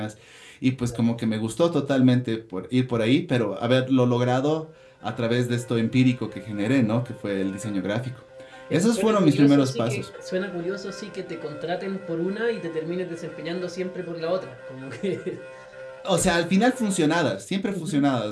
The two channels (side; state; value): both; identical; correlation 1.00